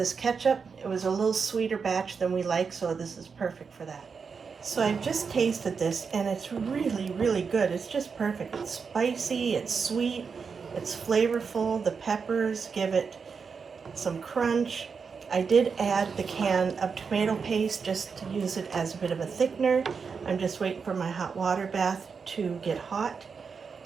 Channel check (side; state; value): left; quieter; 5.6 dB